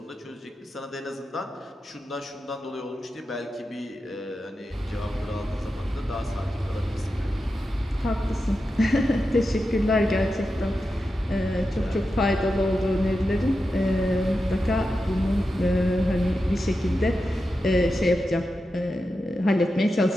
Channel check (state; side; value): normal; both; correlation 0.90